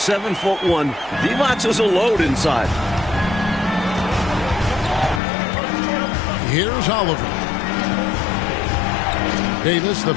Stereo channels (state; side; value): drops out; right; at 5.2 s